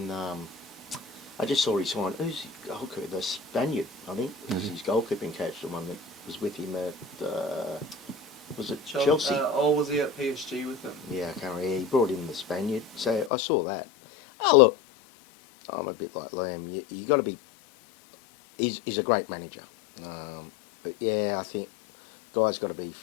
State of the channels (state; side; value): drops out; right; at 13.3 s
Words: I just saw he signed. Who's his goalkeeper? The Spaniard, I think. Is his goalkeeping coach, the one that was with him at. Was it Chelsea? Or was he at PSG with them? Yeah, I can't remember. He brought in the Spaniard. So I saw that. Oh look, I'm a bit like Liam. You got to be. He's a great manager. But yeah, I think guys got to be